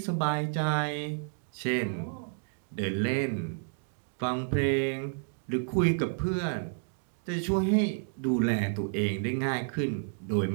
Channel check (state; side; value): silent; left; digital silence